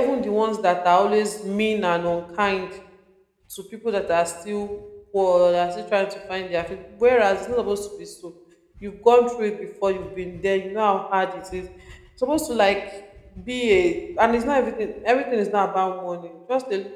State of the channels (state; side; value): identical; both; correlation 1.00